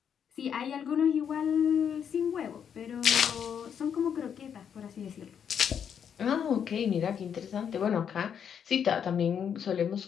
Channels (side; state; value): right; quieter; 8.0 dB